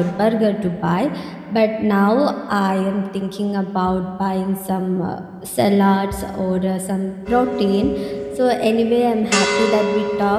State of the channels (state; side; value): identical; both; correlation 1.00